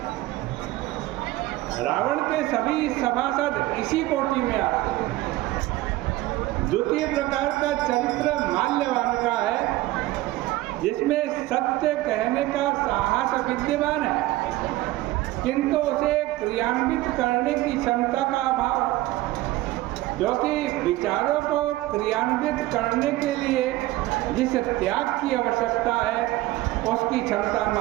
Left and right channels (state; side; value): quieter; left; 17.4 dB